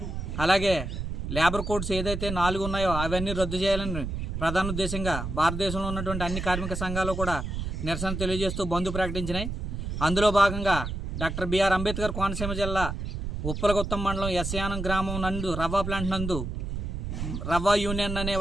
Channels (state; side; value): noise; right; rumble, 4 dB below the sound